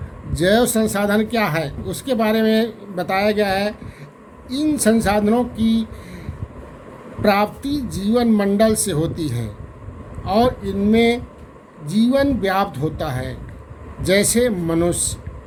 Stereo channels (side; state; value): both; identical; correlation 1.00